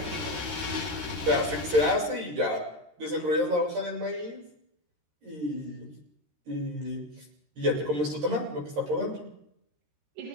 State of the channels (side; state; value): left; late; 13 ms